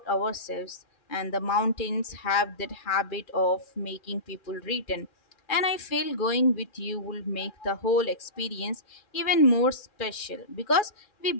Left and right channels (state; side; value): late; right; 2.4 ms